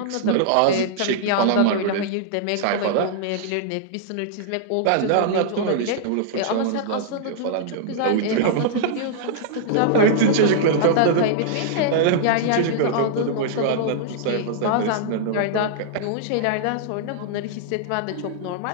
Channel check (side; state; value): both; different; correlation -0.02